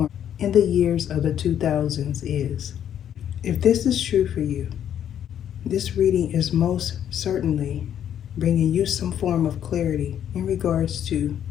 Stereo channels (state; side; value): quieter; right; 9.9 dB